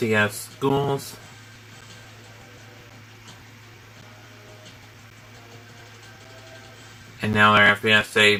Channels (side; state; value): both; identical; correlation 1.00